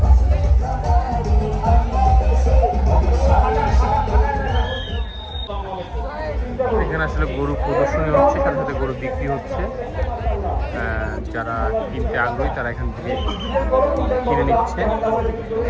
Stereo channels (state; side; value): identical; both; correlation 1.00